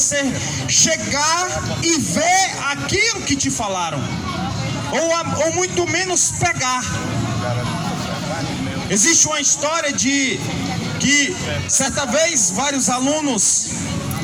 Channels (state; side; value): identical; both; correlation 1.00